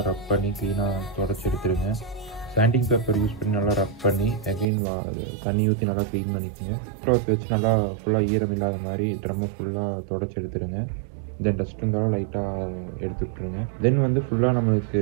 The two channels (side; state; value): left; drops out; at 4.7 s